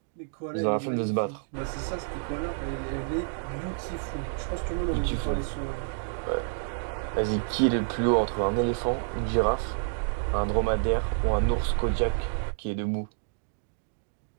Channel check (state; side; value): silent; left; digital silence